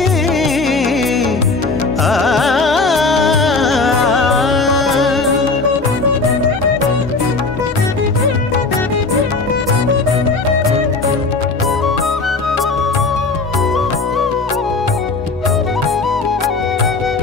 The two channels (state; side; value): quieter; right; 3.8 dB